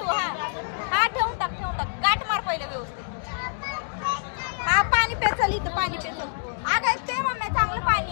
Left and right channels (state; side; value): silent; right; digital silence